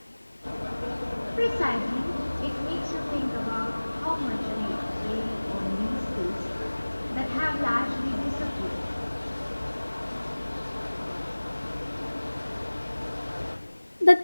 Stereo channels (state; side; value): inverted; both; correlation -1.00